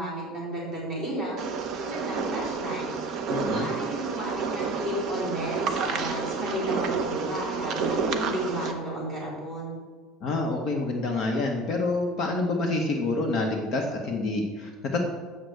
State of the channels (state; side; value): normal; both; correlation 0.42